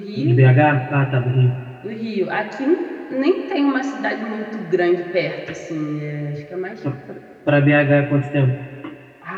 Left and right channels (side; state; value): both; identical; correlation 1.00